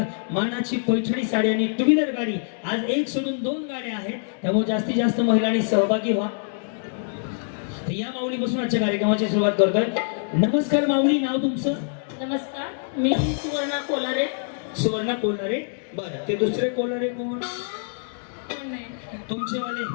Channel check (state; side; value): silent; right; digital silence